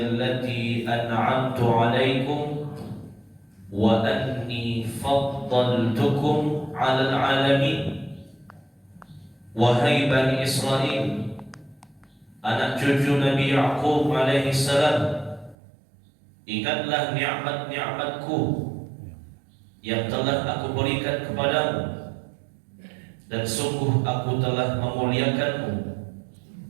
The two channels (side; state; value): left; drops out; at 15.6 s